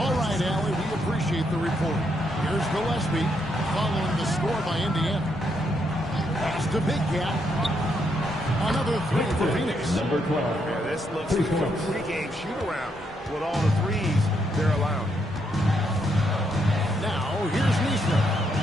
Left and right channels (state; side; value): normal; both; correlation 0.77